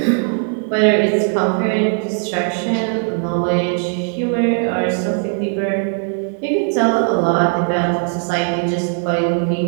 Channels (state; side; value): silent; left; 57 dB below the other